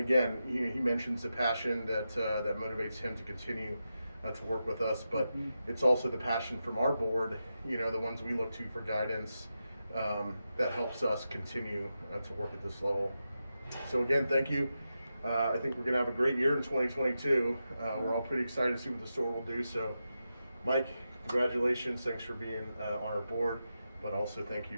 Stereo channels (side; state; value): both; inverted; correlation -0.89